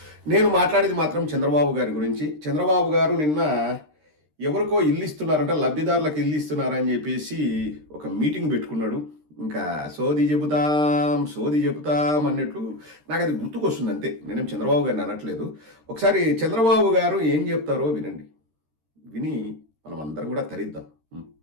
నేను మాట్లాడేది మాత్రం చంద్రబాబు గారి గురించి. చంద్రబాబు గారు నిన్న ఎవరికో ఇల్లు ఇస్తున్నారంట, లబ్ధిదారులకు ఇల్లు ఇస్తున్నారని చెప్పేసి ఒక మీటింగ్ పెట్టుకున్నాడు. ఇంకా సోది చెబుతాం అన్నట్లు నాకు అది గుర్తుకొస్తుంది అంతే. నేనేం చంద్రబాబు గారిని అనట్లేదు. ఒకసారి చంద్రబాబు గారు ఏం చెప్తారో వినండి. విని మనం అందరం కూడా తరిద్దాం.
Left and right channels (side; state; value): left; late; 13 ms